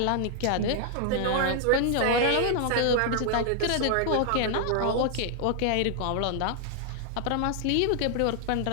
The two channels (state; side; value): different; both; correlation 0.00